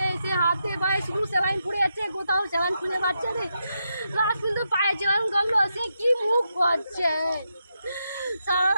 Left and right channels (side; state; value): both; inverted; correlation -0.84